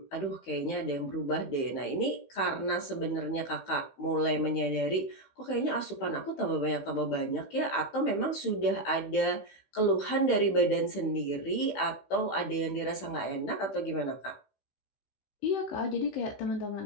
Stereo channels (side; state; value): right; late; 15 ms